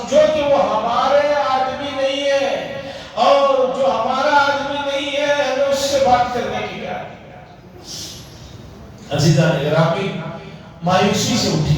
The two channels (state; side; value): identical; both; correlation 1.00